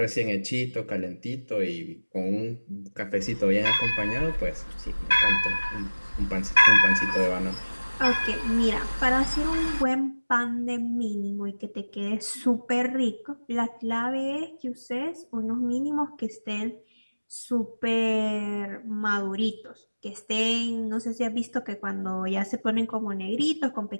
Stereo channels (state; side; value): inverted; both; correlation -1.00